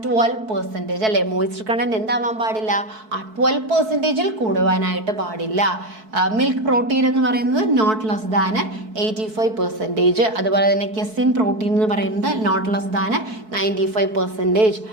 12% അല്ലേ. മോയിസ്ചർ കണ്ടന്റ് എന്താവാൻ പാടില്ല? 12% കൂടുവാനായിട്ട് പാടില്ല. മിൽക്ക് പ്രോട്ടീൻ എന്ന് പറയുന്നത് നോട്ട് ലെസ് ദാൻ 85%. അതുപോലെ തന്നെ കെസിൻ പ്രോട്ടീൻ എന്ന് പറയുന്നത് നോട്ട് ലെസ് ദാൻ 95%.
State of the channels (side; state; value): left; late; 4.6 ms